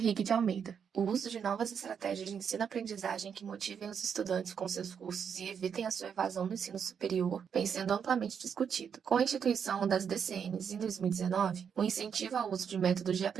de Almeida. O uso de novas estratégias de ensino-aprendizagem que motivem os estudantes com seus cursos e evitem a sua evasão do ensino superior vem sendo amplamente discutido. Com a instituição das DCNs em 2019, o incentivo ao uso de métodos de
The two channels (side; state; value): left; quieter; 7.3 dB